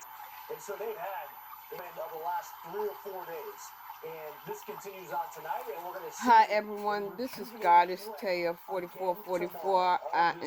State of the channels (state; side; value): identical; both; correlation 1.00